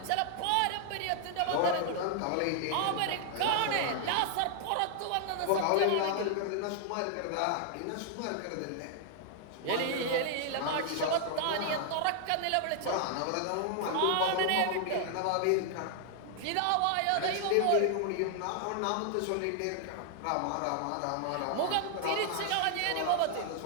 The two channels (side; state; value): both; different; correlation 0.00